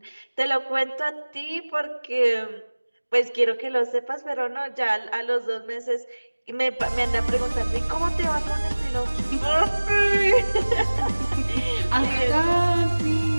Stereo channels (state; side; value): inverted; both; correlation -1.00